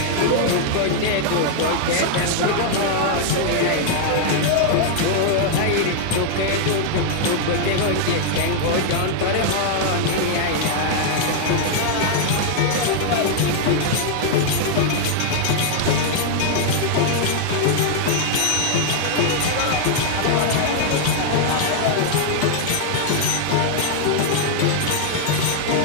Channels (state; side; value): different; both; correlation 0.00